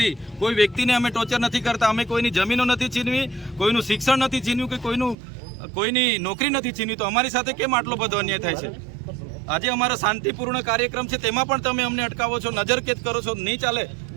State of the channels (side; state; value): left; drops out; at 5.2 s